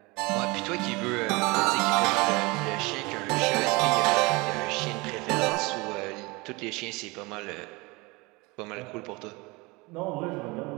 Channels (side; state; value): left; quieter; 25.0 dB